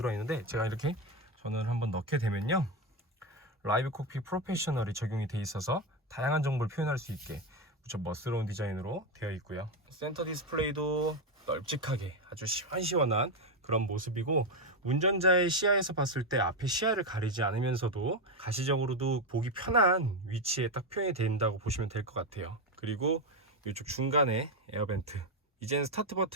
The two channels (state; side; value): normal; both; correlation 0.10